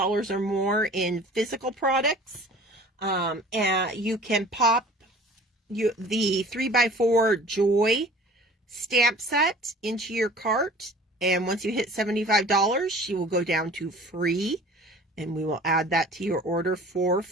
or more in physical products, and you can pop the 3x4 Joy stamp set into your cart, and once you hit $75, she will go down to free, and we will add that to your order for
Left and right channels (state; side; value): normal; both; correlation 0.46